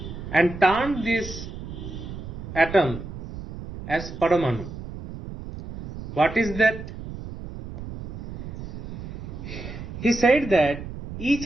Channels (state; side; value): noise; right; rumble, 10 dB below the sound